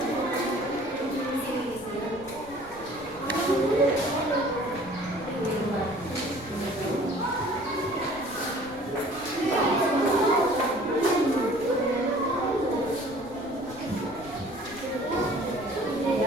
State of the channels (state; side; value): noise; left; rumble, 21 dB below the sound